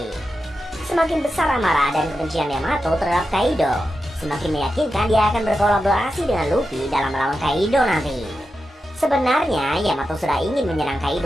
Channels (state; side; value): normal; both; correlation 0.90